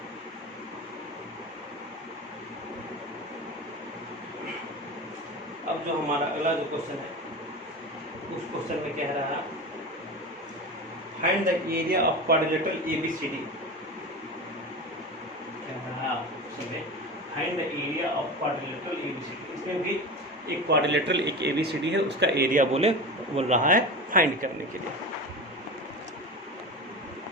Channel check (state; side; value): normal; both; correlation 0.28